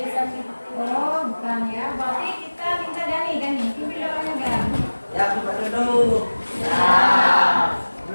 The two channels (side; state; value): both; inverted; correlation -1.00